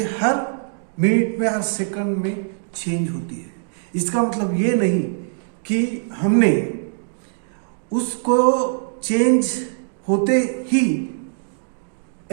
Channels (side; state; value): left; silent; digital silence